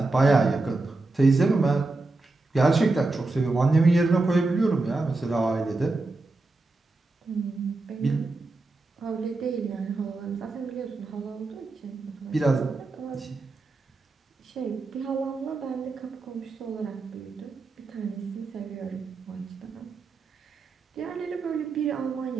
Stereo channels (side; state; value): left; quieter; 3.4 dB